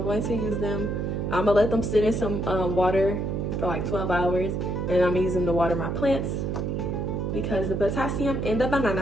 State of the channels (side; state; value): right; noise; hum, 1 dB below the sound